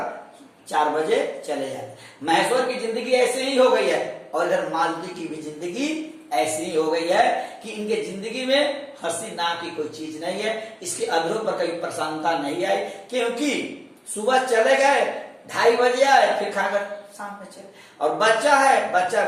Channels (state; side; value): identical; both; correlation 1.00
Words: 4 बजे चले जाते हैं। महेश्वर की जिंदगी ऐसे ही हो गई है और इधर मालती की भी जिंदगी ऐसी ही हो गई है कि इनके जिंदगी में हंसी नाम की कोई चीज नहीं है, इसके अधरों पर कभी प्रसन्नता नहीं आई, क्योंकि सुबह चले गए, 2:30 बजे आए, फिर खाकर शाम में चले। और बच्चा है, बच्चा